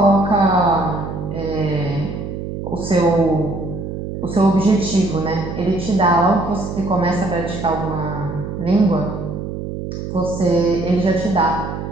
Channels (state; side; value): noise; right; hum, 6 dB below the sound